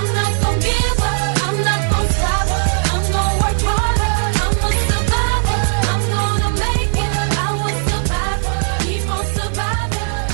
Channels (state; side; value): silent; left; digital silence